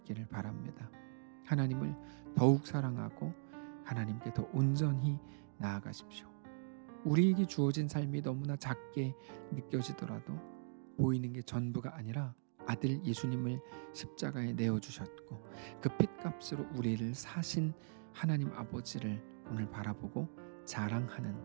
바랍니다. 하나님을 더욱 사랑하고 하나님께 더 온전히 나아가십시오. 우리에게 주어진 삶이 너무나 작게 느껴지더라도 보이는 게 전부가 아니라 아들 예수님을 십자가에 내어주셨고 그 핏값으로 우리를 사신 하나님 아버지를 오늘 바라보고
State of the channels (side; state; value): left; silent; digital silence